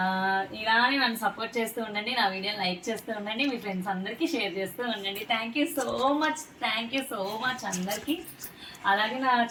ఇలానే నన్ను సపోర్ట్ చేస్తూ ఉండండి, నా వీడియోని లైక్ చేస్తూ ఉండండి, మీ ఫ్రెండ్స్ అందరికీ షేర్ చేస్తూ ఉండండి. థ్యాంక్ యూ సో మచ్ అందరికీ. అలాగే నా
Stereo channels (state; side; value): identical; both; correlation 1.00